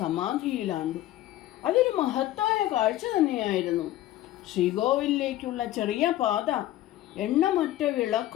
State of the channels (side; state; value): right; quieter; 14.4 dB